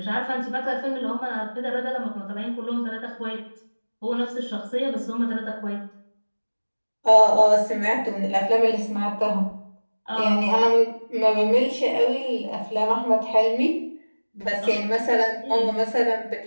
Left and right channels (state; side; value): inverted; both; correlation -1.00